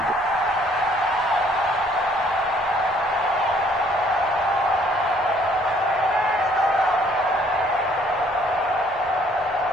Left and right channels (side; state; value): both; normal; correlation 0.61